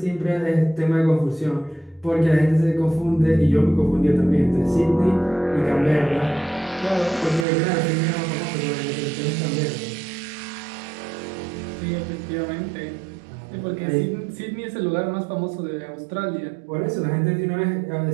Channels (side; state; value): left; drops out; at 7.5 s